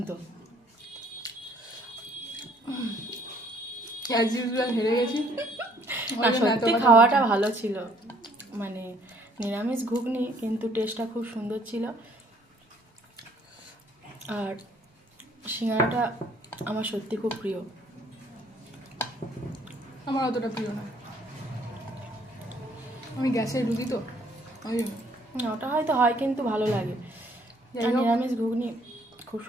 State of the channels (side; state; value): both; normal; correlation 0.62